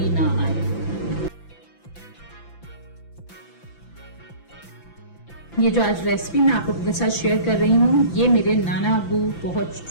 ना आए। ये जो आज रेसिपी मैं आप लोगों के साथ शेयर कर रही हूँ ये मेरे नाना अबू बहुत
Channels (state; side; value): late; right; 5.9 ms